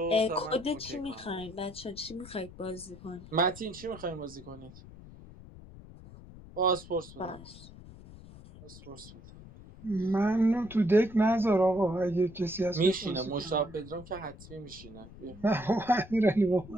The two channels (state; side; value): noise; left; rumble, 18 dB below the sound